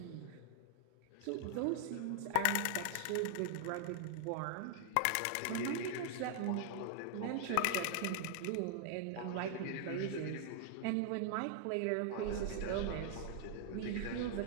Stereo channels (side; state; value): both; different; correlation 0.00